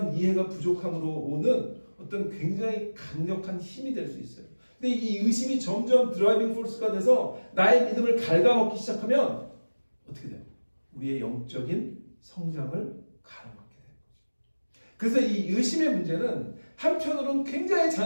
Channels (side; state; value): both; inverted; correlation -1.00